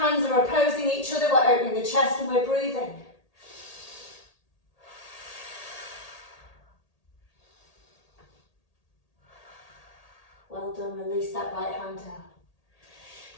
are opposing each other, we're opening the chest and we're breathing. Well done, release that right hand down.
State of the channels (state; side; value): late; right; 1.8 ms